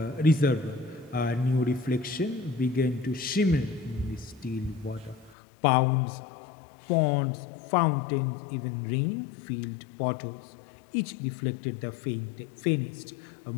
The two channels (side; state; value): right; drops out; at 5.4 s